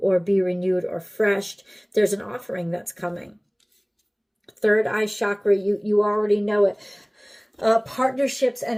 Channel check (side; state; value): both; identical; correlation 1.00